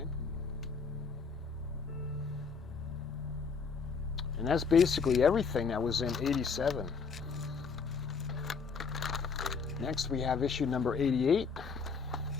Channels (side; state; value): right; quieter; 5.3 dB